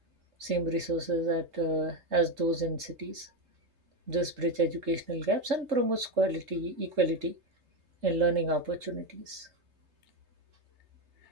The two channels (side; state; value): left; late; 3.7 ms